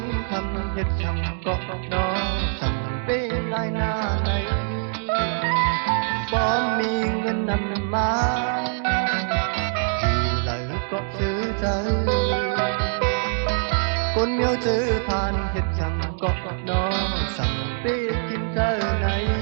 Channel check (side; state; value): left; silent; 63 dB below the other